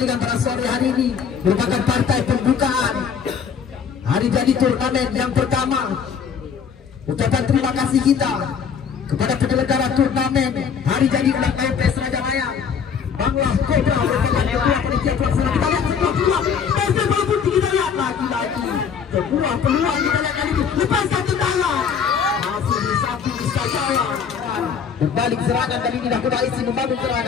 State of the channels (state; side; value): quieter; right; 6.9 dB